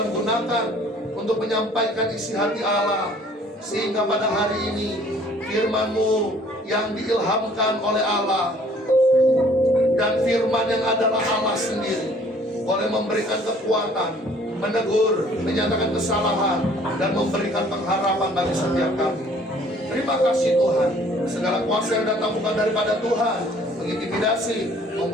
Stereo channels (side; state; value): both; normal; correlation 0.56